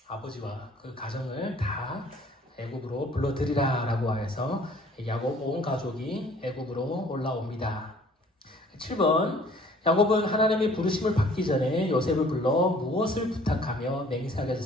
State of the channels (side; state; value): both; normal; correlation 0.55